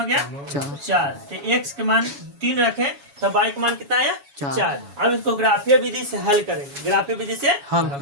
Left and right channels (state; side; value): late; left; 7.1 ms